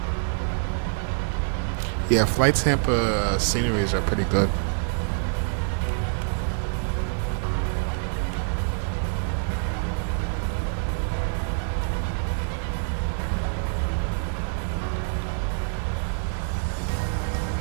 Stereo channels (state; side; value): silent; left; digital silence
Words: Yeah, Fly Tampa sceneries are pretty good.